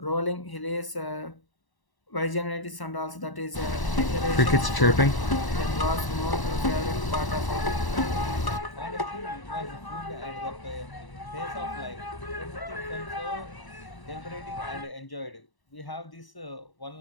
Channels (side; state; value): right; late; 1.0 ms